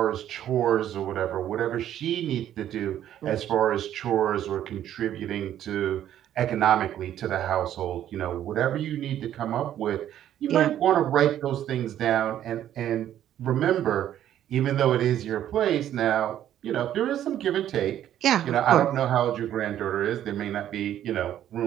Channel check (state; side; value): quieter; left; 11.3 dB